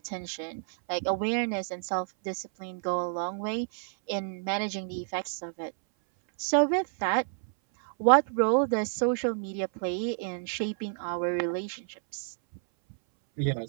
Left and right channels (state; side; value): silent; left; 58 dB below the other